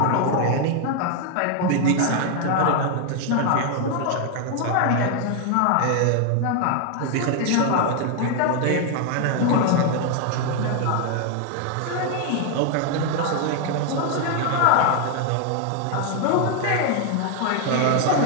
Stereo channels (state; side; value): different; both; correlation 0.00